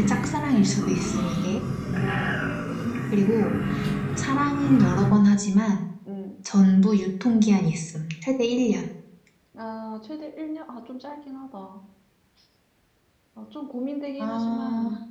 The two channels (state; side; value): identical; both; correlation 1.00